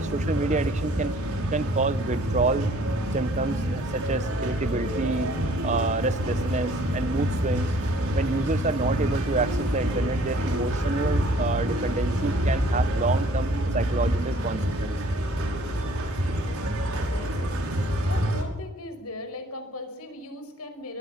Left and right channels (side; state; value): both; normal; correlation 0.57